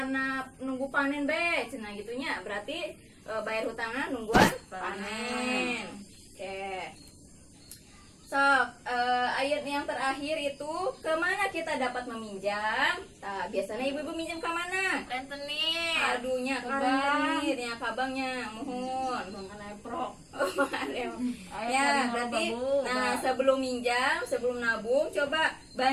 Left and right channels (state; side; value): identical; both; correlation 1.00